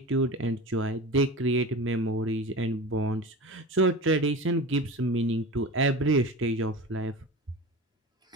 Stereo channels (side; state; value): both; normal; correlation 0.31